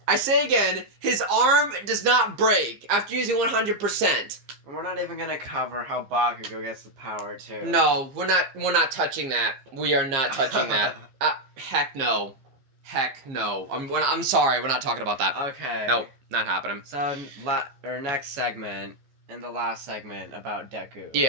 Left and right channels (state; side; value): late; left; 15 ms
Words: I say again, his arm does not break after using 100%. We're not even gonna cover how Bakugo gets the power, too. No, we're not touching that. We are not touching that. Heck no. Heck no. I'm sorry, we're not talking about that. Okay. Nope, not happening. So, our next segment... in the last segment about Deku.